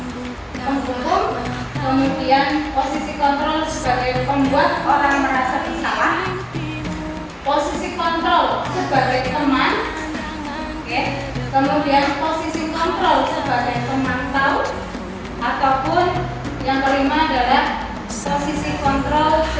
kemudian posisi kontrol sebagai pembuat orang merasa bersalah, posisi kontrol sebagai teman, oke, kemudian posisi kontrol sebagai pemantau, ataupun yang kelima adalah posisi kontrol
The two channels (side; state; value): both; identical; correlation 1.00